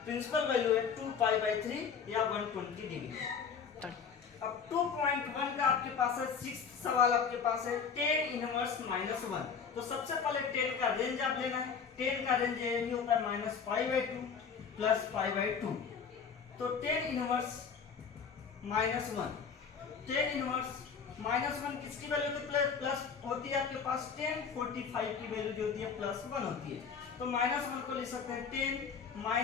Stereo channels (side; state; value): right; quieter; 6.3 dB